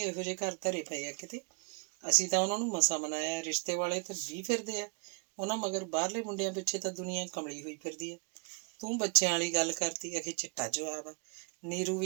ਇਹੋ ਜਿਹੇ ਘਰ ਧਰੇ ਪਏ ਆ ਕਿਤੇ। ਅਸੀਂ ਤਾਂ ਉਹਨਾਂ ਨੂੰ ਮਸਾਂ ਮਨਾਇਆ, ਰਿਸ਼ਤੇ ਵਾਲੇ ਤਾਂ 20 ਫਿਰਦੇ ਆ ਉਹਨਾਂ ਮਗਰ। ਬਾਹਰਲੇ ਮੁੰਡਿਆਂ ਪਿੱਛੇ ਤਾਂ ਦੁਨੀਆ ਕਮਲੀ ਹੋਈ ਫਿਰਦੀ ਆ। ਤੂੰ ਬੱਚਿਆਂ ਵਾਲੀ ਗੱਲ ਕਰਤੀ, ਅਖੇ ਚਿੱਟਾ ਜਵਾਬ ਆ। ਨੀਰੂ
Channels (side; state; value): left; quieter; 34.9 dB